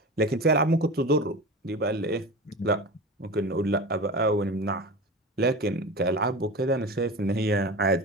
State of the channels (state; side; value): normal; both; correlation 0.30